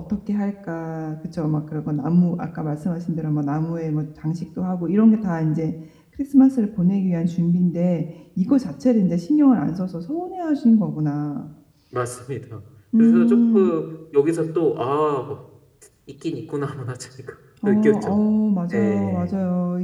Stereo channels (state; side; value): identical; both; correlation 1.00